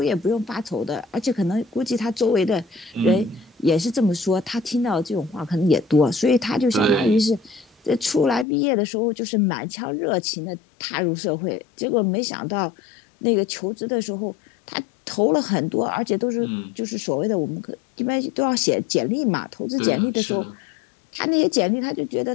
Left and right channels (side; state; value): right; drops out; at 8.5 s